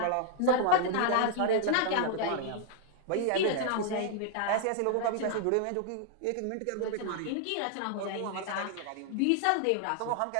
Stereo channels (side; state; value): both; different; correlation 0.00